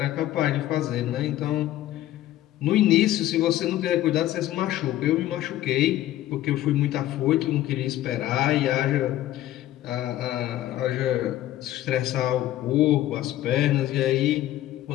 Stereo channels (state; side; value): quieter; right; 14.0 dB